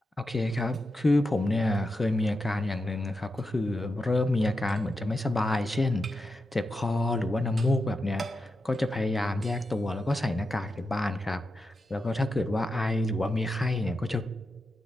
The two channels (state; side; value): normal; both; correlation 0.88